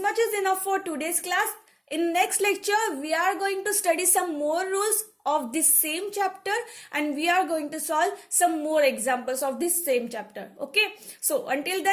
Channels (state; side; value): identical; both; correlation 1.00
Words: much is enough for today's class. In next lecture, we are going to study some more rules of this same chapter and we are going to solve some more examples of this same chapter. Okay, so until